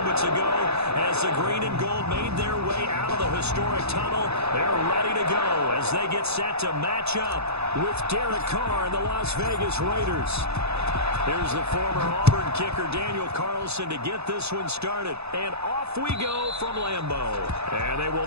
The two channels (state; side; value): late; left; 0.79 ms